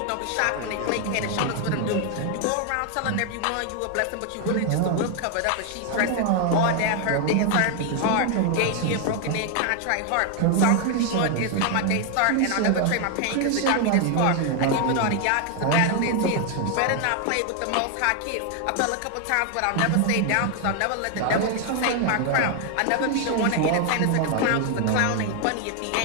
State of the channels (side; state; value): both; different; correlation 0.00